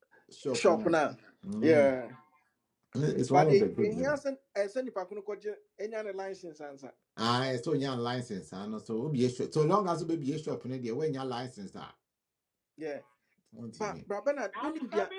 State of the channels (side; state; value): both; identical; correlation 1.00